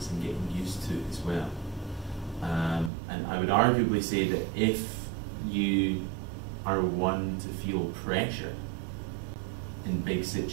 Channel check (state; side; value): drops out; left; at 2.9 s